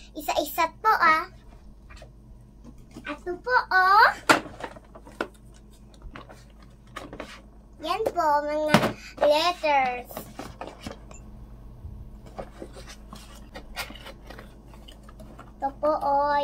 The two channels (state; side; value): identical; both; correlation 1.00